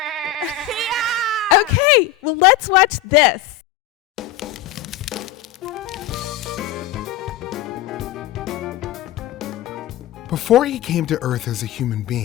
Yeah. Okay, well, let's watch this. Before he came to earth as a human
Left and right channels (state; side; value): quieter; right; 11.0 dB